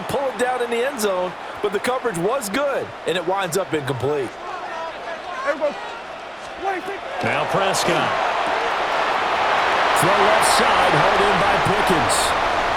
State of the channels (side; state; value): both; identical; correlation 1.00